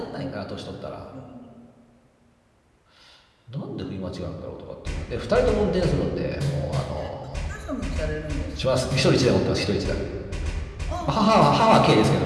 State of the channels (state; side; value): identical; both; correlation 1.00